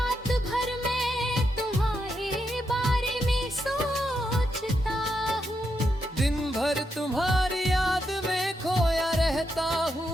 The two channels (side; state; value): both; normal; correlation 0.82